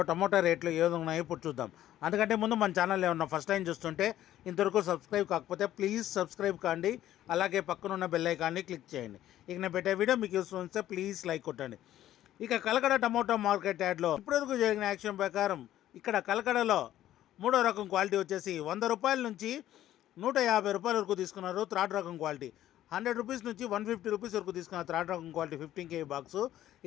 టమోటా రేట్లు ఏ విధంగా ఉన్నాయో ఇప్పుడు చూద్దాం. అందుకంటే ముందు మన ఛానల్ ఏమన్నా ఫస్ట్ టైం చూస్తుంటే ఇంతవరకు సబ్స్క్రైబ్ కాకపోతే ప్లీజ్ సబ్స్క్రైబ్ కాండి. అలాగే పక్కనున్న బెల్ ఐకాన్ని క్లిక్ చేయండి. ఇక నేను పెట్టే వీడియో మీకు యూస్ఫుల్ వస్తే ప్లీజ్ లైక్ కొట్టండి. ఇక కలకడ టమోటా మార్కెట్ యార్డ్లో ఇప్పటివరకు జరిగిన యాక్షన్ ప్రకారం ఇక్కడ కలకడలో మూడో రకం క్వాలిటీ వచ్చేసి 100 రూపాయల నుంచి 150 రూపాయల వరకు తీసుకున్నారు. థర్డ్ రకం క్వాలిటీ 100 రూపీస్ నుంచి 150 రూపీస్ వరకు తీసుకున్న థర్డ్ రకం క్వాలిటీ 15 కేజీ బాక్సు.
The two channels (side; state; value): right; quieter; 12.9 dB